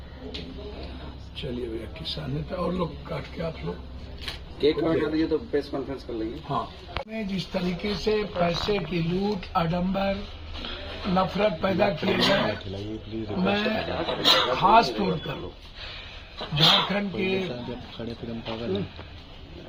चलिए भैया, किसान नेता और लोग काट के आप लोग केक काट कर दीजिए तो प्रेस कॉन्फ्रेंस कर लेंगे। हाँ, में जिस तरीके से पैसे की लूट, आडंबर, नफरत पैदा किए गए, मैं खास तौर पर झारखंड के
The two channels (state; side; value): identical; both; correlation 1.00